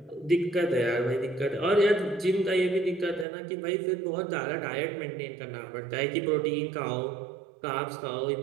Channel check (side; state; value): left; drops out; at 3.2 s